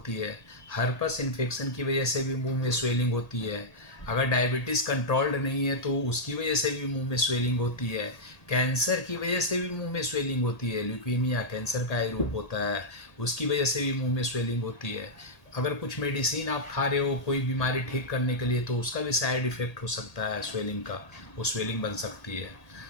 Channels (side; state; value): right; late; 1.8 ms